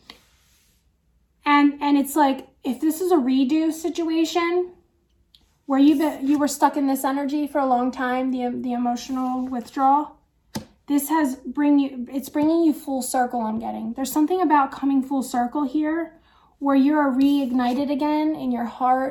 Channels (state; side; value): identical; both; correlation 1.00